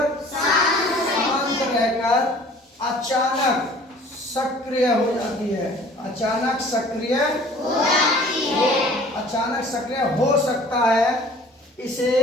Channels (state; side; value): normal; both; correlation 0.50